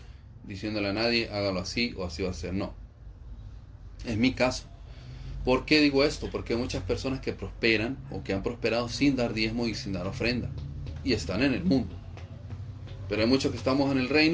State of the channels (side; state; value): both; identical; correlation 1.00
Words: diciéndole a nadie, hágalo así o así va a ser, no. Es mi caso. ¿Por qué digo esto? Porque hay muchas personas que prosperan o que han prosperado sin dar diezmo y sin dar ofrenda. Y están en el mundo. Pero hay muchos que estamos en el